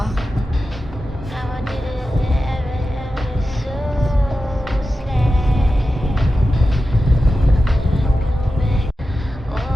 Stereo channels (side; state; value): both; normal; correlation 0.92